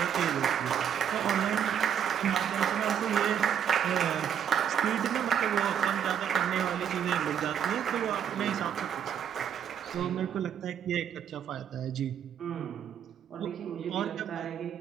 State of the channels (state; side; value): quieter; left; 8.7 dB